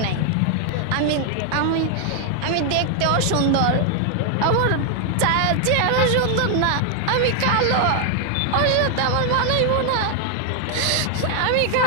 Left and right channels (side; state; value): both; different; correlation 0.00